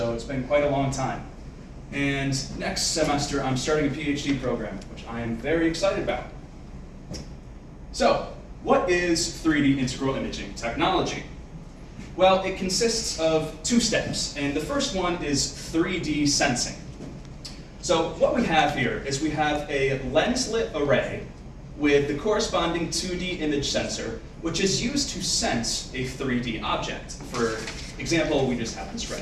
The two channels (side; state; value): both; identical; correlation 1.00